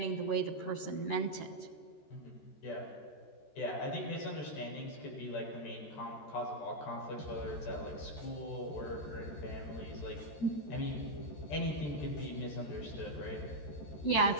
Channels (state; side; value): late; right; 13 ms